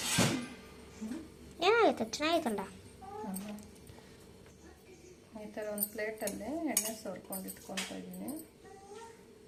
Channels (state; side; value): identical; both; correlation 1.00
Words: ಏನಾಗೈತೆ? ಚೆನ್ನಾಗೈತಲ್ಲ. ಈ ಥರ ಒಂದು ಪ್ಲೇಟಲ್ಲಿ ಎಣ್ಣೆ ಸೋರ್ಕೊಂಡು ಇಟ್ಕೊತಾ ಇದ್ದೀನಿ.